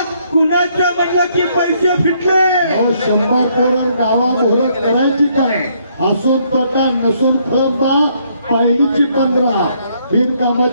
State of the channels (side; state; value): both; inverted; correlation -0.70